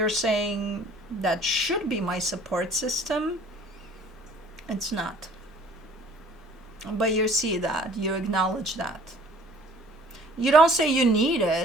saying that should be my support system. It's not. But you see that, you acknowledge that. You don't say you need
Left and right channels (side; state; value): both; normal; correlation 0.53